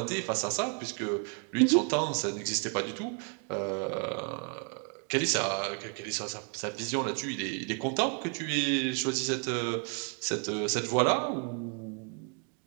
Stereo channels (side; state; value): left; quieter; 38.6 dB